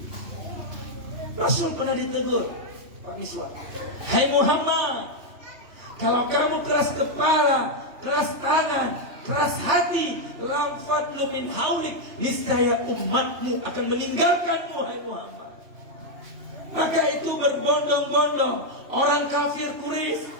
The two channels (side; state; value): left; late; 2.9 ms